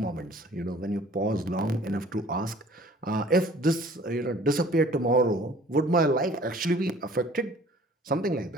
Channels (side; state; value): both; normal; correlation 0.51